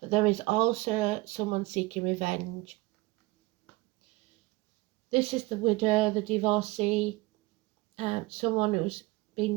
there is also someone seeking revenge. This is the widow, the divorcee, someone who's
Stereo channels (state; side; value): quieter; left; 20.9 dB